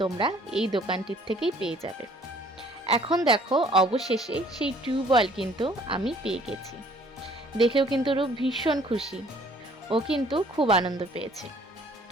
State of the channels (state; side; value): normal; both; correlation 0.58